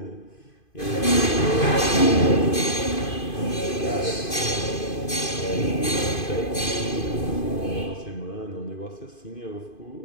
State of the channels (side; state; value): right; late; 2.5 ms